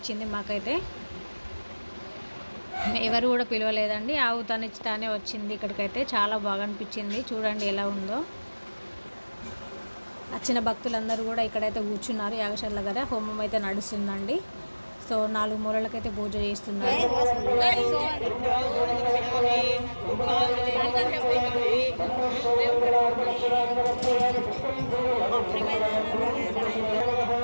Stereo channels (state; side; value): inverted; both; correlation -1.00